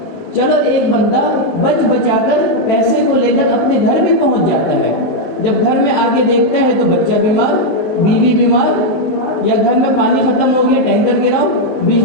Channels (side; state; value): right; late; 19 ms